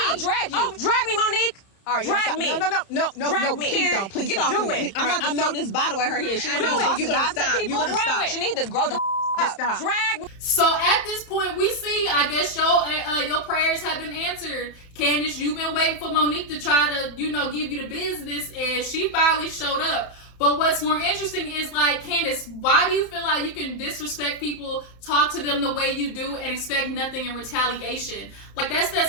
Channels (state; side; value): late; right; 31 ms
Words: I'll drag you. Oh, drag me, Monique. All right, drag me. No, me. Please don't. Please Get stop. Do it. I'm about to throw this bottle at her head. She wants You're gonna stop. She need to grow the up. Stop. Drag me. So at this point, we see, I guess your prayers have been answered. Candiace, you've been waiting for Monique to try to, give you the business, and she finally showed up. But what's more interesting is, like, Candiace, why do you feel like you can disrespect people, talk to them the way you do, and expect nothing in retaliation? Like, that's that